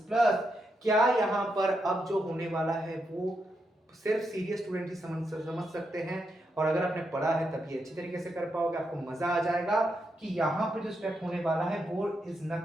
प्लस। क्या यहाँ पर अब जो होने वाला है वो सिर्फ सीरियस स्टूडेंट ही समझ सकते हैं, और अगर आपने पढ़ा है तभी अच्छी तरीके से कर पाओगे, आपको मजा आ जाएगा कि यहाँ पे जो स्टेप होने वाला है वो is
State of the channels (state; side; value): normal; both; correlation 0.83